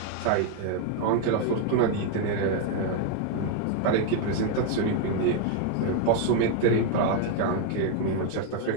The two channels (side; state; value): both; different; correlation 0.01